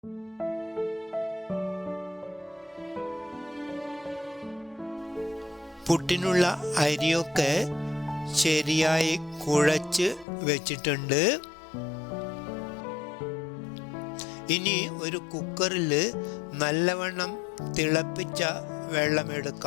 പുട്ടിനുള്ള അരിയൊക്കെ ശരിയായി കുഴച്ച് വെച്ചിട്ടുണ്ട്. ഇനി ഒരു കുക്കറിൽ നല്ലവണ്ണം തിളപ്പിച്ച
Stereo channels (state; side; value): drops out; right; at 10.2 s